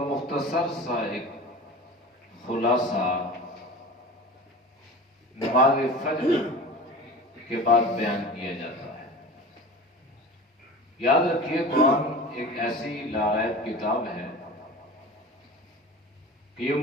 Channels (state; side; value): normal; both; correlation 0.35